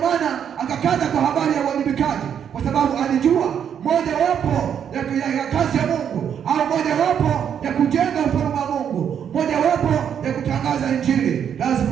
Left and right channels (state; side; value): quieter; left; 8.5 dB